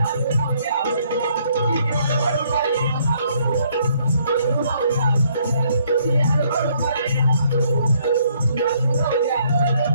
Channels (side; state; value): both; inverted; correlation -0.67